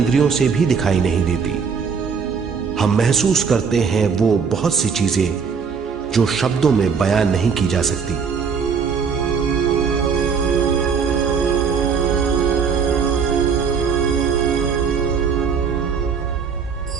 से भी दिखाई नहीं देती। हम महसूस करते हैं वो बहुत सी चीजें जो शब्दों में बयान नहीं की जा सकती।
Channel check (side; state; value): left; quieter; 6.1 dB